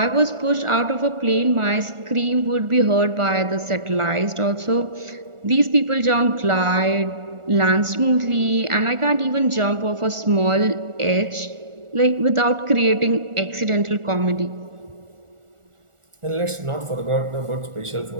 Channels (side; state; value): left; late; 1.4 ms